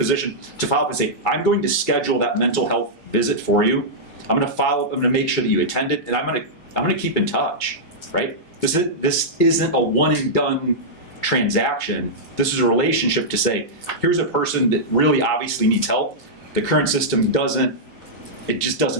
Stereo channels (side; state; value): both; normal; correlation -0.10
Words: to follow up and say, I'm going to schedule that mental health visit for you. I'm going to follow up. I'm going to make sure that you attend it, and I'm going to keep in touch, right? This isn't a one and done transaction. This is a relationship to say, here's a person that really obviously needs help. The current system just